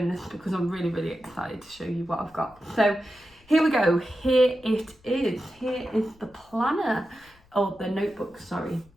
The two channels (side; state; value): left; noise; rumble, 29 dB below the sound